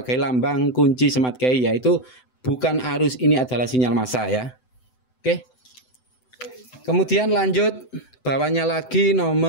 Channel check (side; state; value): right; late; 7.9 ms